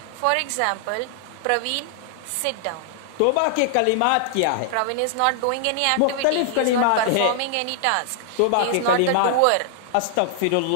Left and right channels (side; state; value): both; different; correlation -0.01